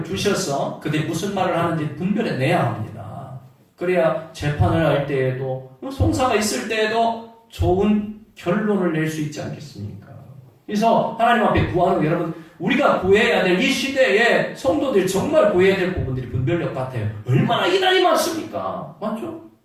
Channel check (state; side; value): identical; both; correlation 1.00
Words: 주셔서 그들이 무슨 말을 하는지 분별해내야 합니다. 그래야 재판을 할 때에도 송사가 있을 때에도 좋은 결론을 낼 수 있지 않겠습니까? 그래서 하나님 앞에 구하는 거, 여러분, 우리가 구해야 될 이 시대에 성도들이 정말 구해야 될 부분들이 분별력 같아요. 얼마나 이단이 많습니까? 맞죠?